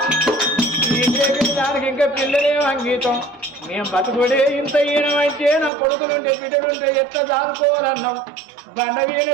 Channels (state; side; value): drops out; left; at 5.7 s